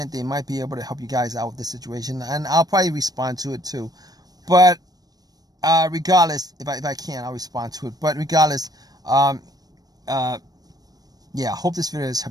they might be able to help you guys out with the situation, and I'll probably respond to it too. But regardless, if I can, I'll respond to it. But regardless, hope this video has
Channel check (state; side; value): late; left; 0.19 ms